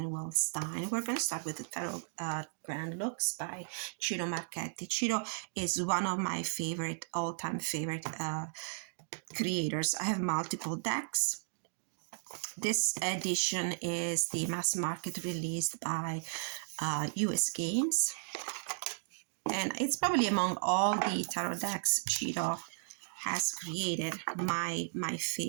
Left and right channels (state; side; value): silent; left; digital silence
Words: Wellstein. We're going to start with the Tarot Grand Looks by Ciro Marchetti. Ciro is one of my favorite, all-time favorite creators. I have multiple decks. This edition is the mass market released by US Games. And it's probably among all the tarot decks Ciro has created, my